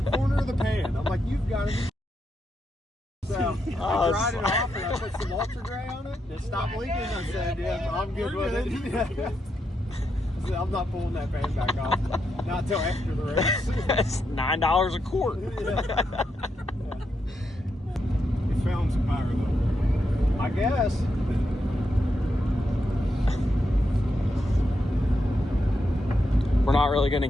corner of the pan. I'm like, you've got to be. So I dried it off and I put some ultra gray on it. It stopped leaking. I said, yeah, I'm good with it. I said, I'm not pulling that pan back off. Not until after the race. That's $9 a quart. Yeah. He found some power though. I guess. We're not really going to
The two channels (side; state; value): both; normal; correlation 0.83